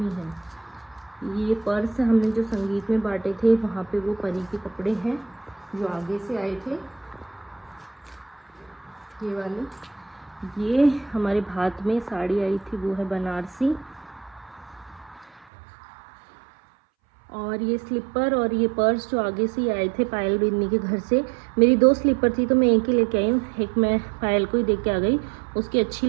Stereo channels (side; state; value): left; drops out; at 15.5 s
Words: ही हैं। ये पर्स हमने जो संगीत में बांटे थे, वहाँ पे वो परी के कपड़े हैं जो आगे से आए थे, ये वाली। ये हमारे भात में साड़ी आई थी, वो है बनारसी। और ये स्लीपर और ये पर्स जो आगे से ही आए थे पायल बिन्नी के घर से। मेरी 2 स्लीपर थी तो मैं एक ही लेके आई हूँ, एक मैं पायल को ही देख के आ गई, उसकी अच्छी